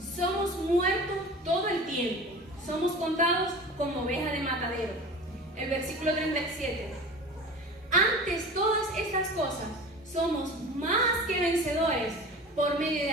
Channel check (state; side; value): normal; both; correlation 0.36